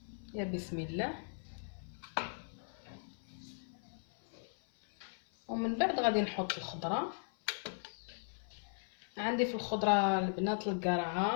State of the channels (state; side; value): silent; right; 53 dB below the other